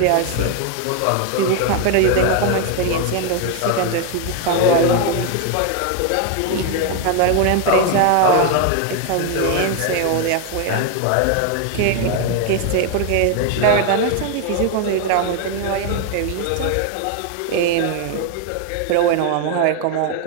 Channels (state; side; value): different; both; correlation 0.00